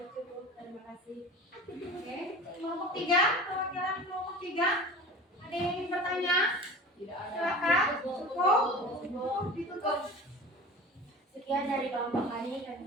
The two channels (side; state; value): both; normal; correlation 0.37